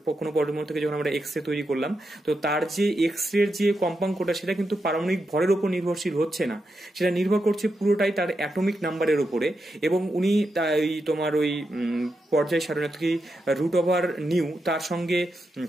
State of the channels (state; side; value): normal; both; correlation 0.86